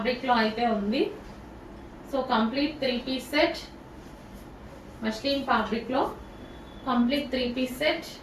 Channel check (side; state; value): both; identical; correlation 1.00